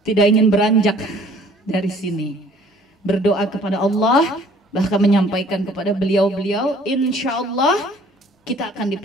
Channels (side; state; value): both; normal; correlation 0.55